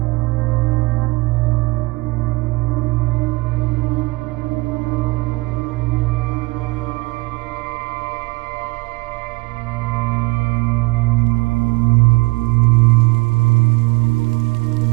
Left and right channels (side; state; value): left; quieter; 24.2 dB